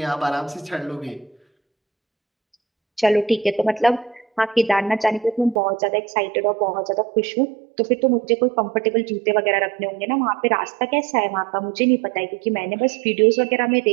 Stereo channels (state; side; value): drops out; left; at 5.6 s